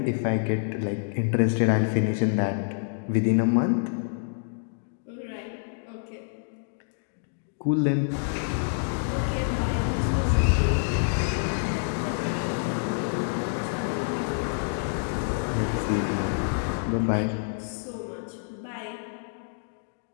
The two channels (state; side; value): silent; right; digital silence